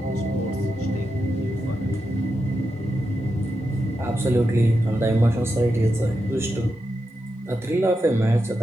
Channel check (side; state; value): both; normal; correlation 0.87